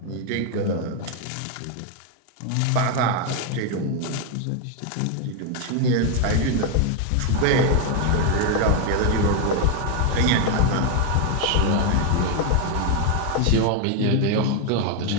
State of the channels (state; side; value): different; both; correlation 0.01